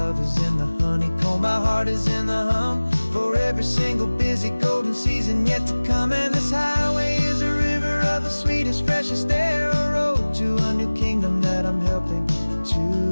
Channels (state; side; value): inverted; both; correlation -1.00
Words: is in the honeycomb, my heart is in the hum, for every single busy golden season yet to come. And this highway is a river of the sweetest, freshest air, a road to a new kingdom that I'm helping to